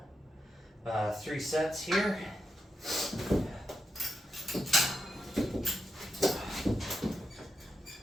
3 sets here.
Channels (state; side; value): normal; both; correlation 0.85